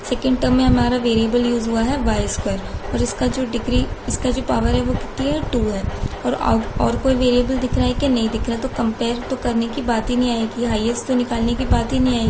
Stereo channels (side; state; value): both; identical; correlation 1.00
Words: सेकंड टर्म में हमारा वेरिएबल यूज हुआ है y² और इसका जो पावर है वो कितनी है 2 है। और कोई वेरिएबल दिख रहा है कि नहीं दिख रहा, तो कंपेयर तो करने की बात ही नहीं आएगी, हाईएस्ट तो निकालने की बात ही नहीं